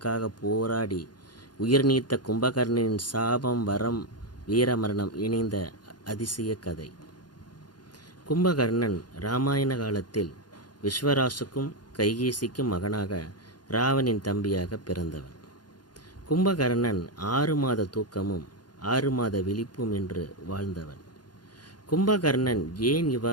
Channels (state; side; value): late; right; 0.70 ms